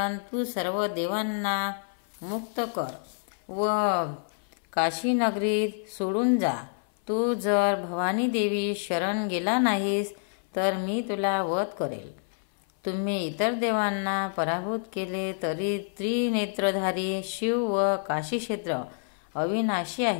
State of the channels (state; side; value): silent; right; 58 dB below the other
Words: तू सर्व देवांना मुक्त कर व काशीनगरीत सोडून जा। तू जर भवानी देवी शरण गेला नाहीस तर मी तुला वध करेल। तुम्ही इतर देवांना पराभूत केले तरी त्रिनेत्रधारी शिव व काशीक्षेत्र अविनाशी